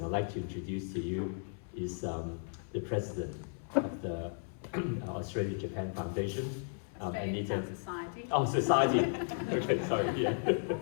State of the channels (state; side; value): silent; right; 54 dB below the other